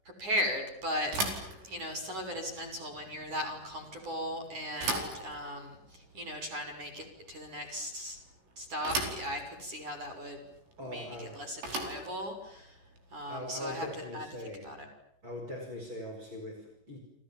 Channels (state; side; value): late; left; 11 ms